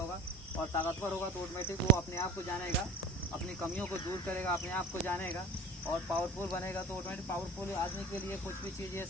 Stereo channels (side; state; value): both; normal; correlation 0.38